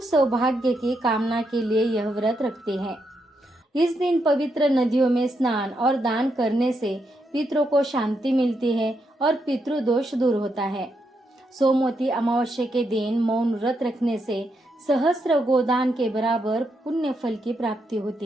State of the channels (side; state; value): both; normal; correlation 0.81